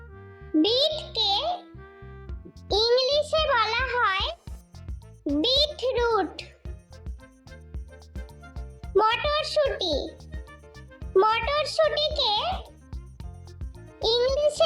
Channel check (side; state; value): both; identical; correlation 1.00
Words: বিটকে ইংলিশে বলা হয় বিটরুট। মটরশুঁটি, মটরশুঁটিকে